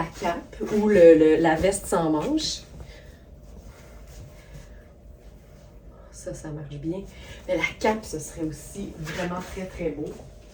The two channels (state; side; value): identical; both; correlation 1.00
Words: cape ou la veste sans manches. Ça marche bien. Mais la cape, ce serait aussi vraiment très beau.